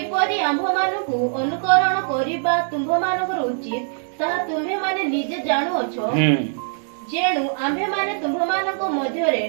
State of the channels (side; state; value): left; silent; digital silence